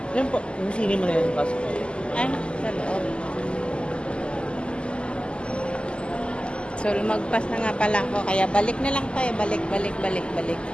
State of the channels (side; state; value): right; late; 0.052 ms